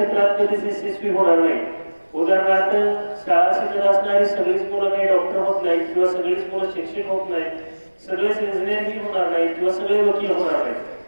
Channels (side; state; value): both; inverted; correlation -1.00